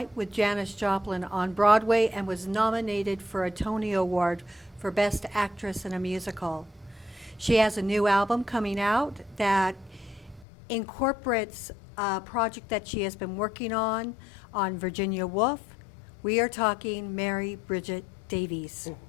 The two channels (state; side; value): drops out; right; at 10.5 s